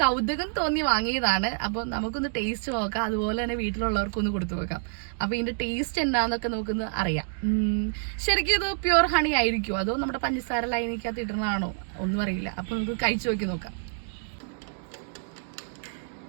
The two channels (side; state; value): left; silent; digital silence